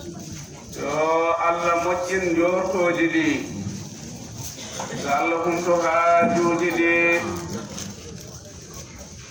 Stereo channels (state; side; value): identical; both; correlation 1.00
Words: yo Allah moƴƴin jortoji ɗi yo Allah humto haajuji ɗi